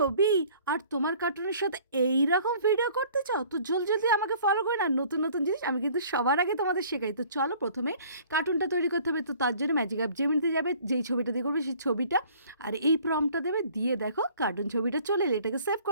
আর তোমার কার্টুনের সাথে এই রকম ভিডিও করতে চাও তো জলদি আমাকে ফলো করে না, নতুন নতুন জিনিস আমি কিন্তু সবার আগে তোমাদের শেখাই। তো চলো, প্রথমে কার্টুনটা তৈরি করতে হবে। তো তার জন্য ম্যাজিক অ্যাপ জেমিনিতে যাবে, যেই ছবিটা দিয়ে করবে সেই ছবিটা, আর এই প্রম্পটটা দেবে, দিয়ে দেখো কার্টুন ছবিটা চলে এলে এটাকে সেভ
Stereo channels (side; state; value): both; inverted; correlation -0.53